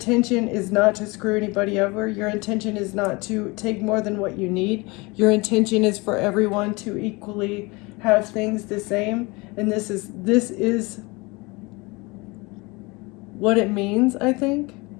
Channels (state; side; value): quieter; right; 25.6 dB